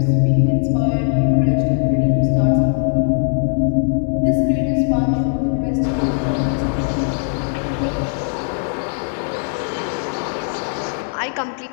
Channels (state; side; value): silent; right; 66 dB below the other